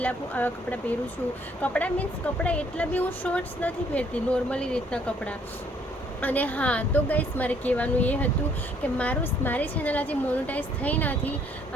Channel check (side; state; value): both; normal; correlation 0.64